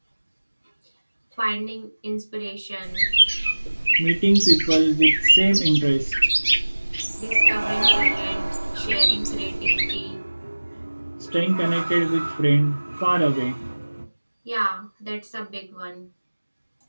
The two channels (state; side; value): inverted; both; correlation -1.00